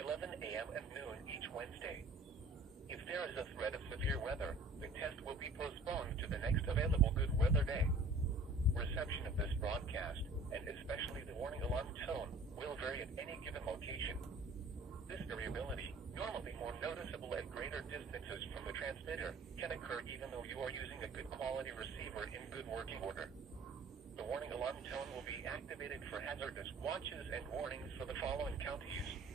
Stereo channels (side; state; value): left; quieter; 3.0 dB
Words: a.m. and noon each Wednesday. If there is a threat of severe weather, the test will be postponed to the next available good weather day. Reception of this broadcast, and especially the warning alarm tone, will vary at any given location. This variability, normally more noticeable at greater distances from the transmitter, can occur even though you are using a good quality receiver in good working order. The warning alarm tone will be activated for hazardous watches and warnings for the following counties: